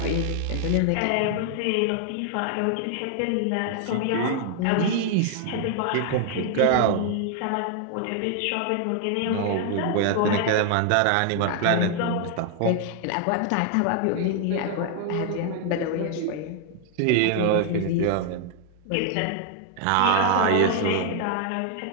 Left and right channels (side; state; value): both; different; correlation 0.00